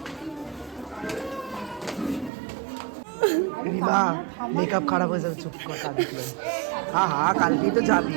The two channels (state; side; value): drops out; left; at 2.3 s